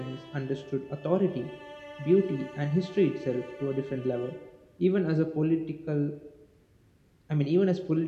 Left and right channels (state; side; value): identical; both; correlation 1.00